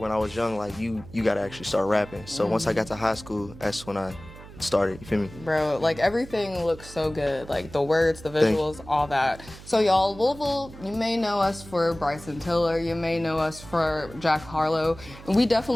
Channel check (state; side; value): noise; right; hum, 17 dB below the sound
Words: I was young, like you gotta actually start rapping. So once I got to high school, that's when I started, you feel me? Bro, like everything looks so good. Like the words, the visuals, all that. So y'all, Louisville, you may know us for Bryson Tiller, you may know us for Jack Harlow, and we